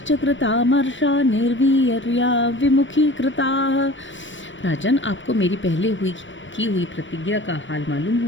कृतामर्षा निर्वीर्या विमुखीकृताः। राजन, आपको मेरी पहले की हुई प्रतिज्ञा का हाल मालूम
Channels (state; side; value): late; right; 0.55 ms